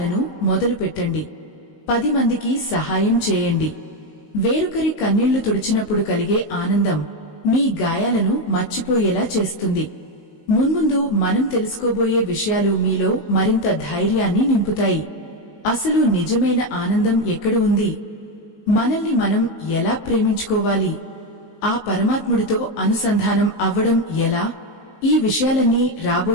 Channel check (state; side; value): late; right; 19 ms